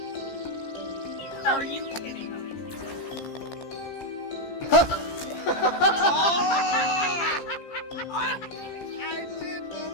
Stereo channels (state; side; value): late; right; 15 ms